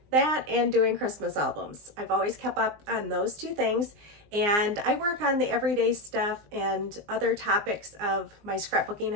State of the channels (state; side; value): late; left; 19 ms